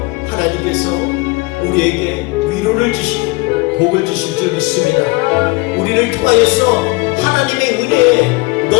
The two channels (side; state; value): right; quieter; 24.8 dB